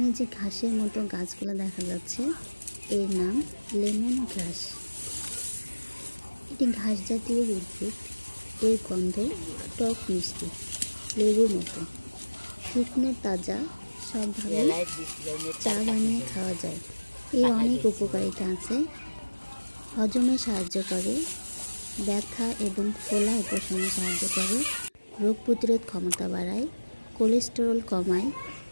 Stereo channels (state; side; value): inverted; both; correlation -1.00